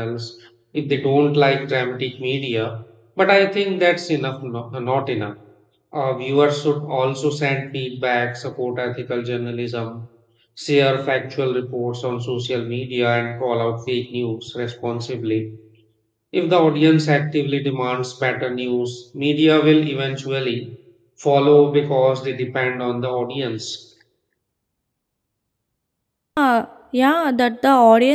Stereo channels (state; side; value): identical; both; correlation 1.00